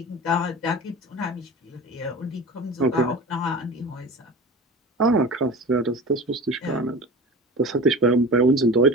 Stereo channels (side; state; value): both; normal; correlation 0.34